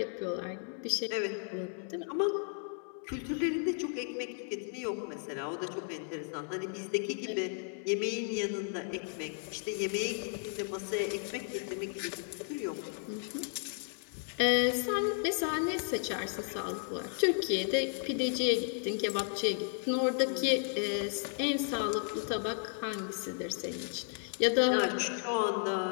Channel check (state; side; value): silent; right; 55 dB below the other